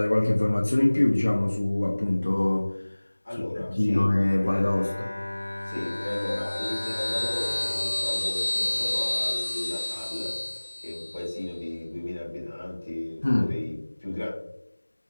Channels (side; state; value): both; inverted; correlation -1.00